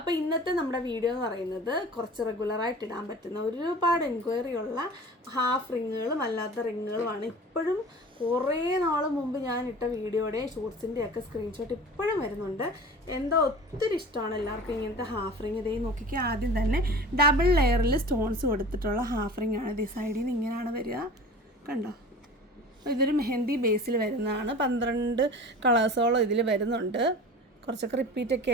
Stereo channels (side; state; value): both; normal; correlation 0.39